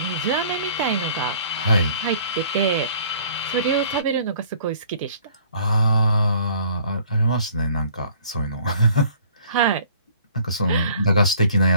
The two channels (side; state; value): both; inverted; correlation -0.55